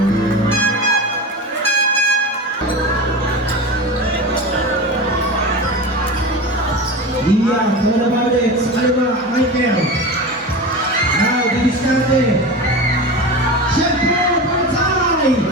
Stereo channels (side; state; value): both; normal; correlation 0.28